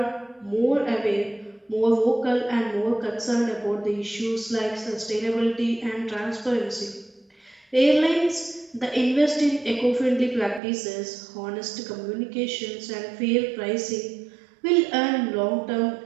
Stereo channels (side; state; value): left; drops out; at 10.6 s